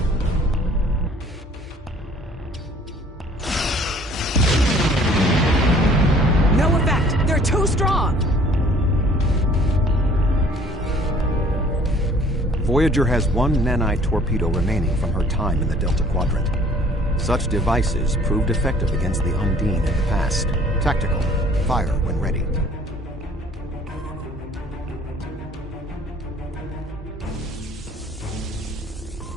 No effect! They're too strong! Voyager has one nanite torpedo remaining from her time in the Delta Quadrant. Such devices proved effective against the Undine in the past. Tactical. Fire when ready.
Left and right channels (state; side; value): normal; both; correlation 0.54